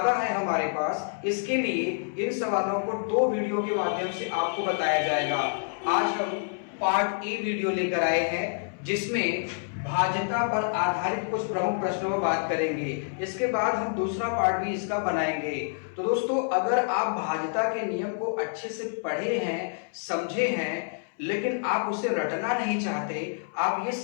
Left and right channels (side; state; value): right; silent; 60 dB below the other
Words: है हमारे पास। इसके लिए इन सवालों को 2 वीडियो के माध्यम से आपको बताया जाएगा। आज हम पार्ट ए वीडियो लेकर आए हैं जिसमें भाज्यता पर आधारित कुछ प्रमुख प्रश्नों पर बात करेंगे। इसके बाद हम दूसरा पार्ट भी इसका बनाएंगे। तो दोस्तों, अगर आप भाज्यता के नियम को अच्छे से पढ़े हैं, समझे हैं, लेकिन आप उसे रटना नहीं चाहते, आप ये